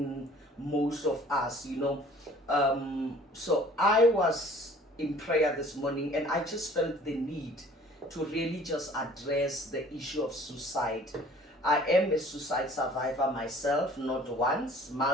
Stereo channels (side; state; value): both; normal; correlation 0.52